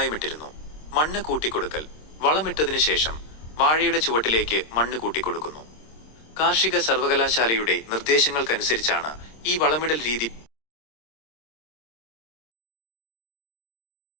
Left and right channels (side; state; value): right; late; 26 ms